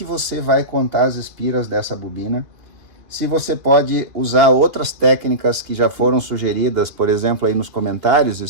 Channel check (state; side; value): late; left; 2.6 ms